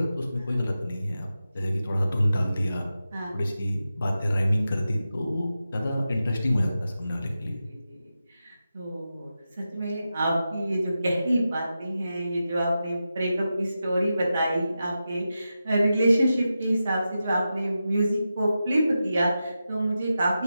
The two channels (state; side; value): inverted; both; correlation -0.91